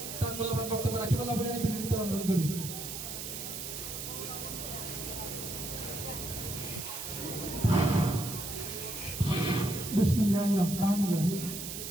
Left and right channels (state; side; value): noise; right; hiss, 7 dB below the sound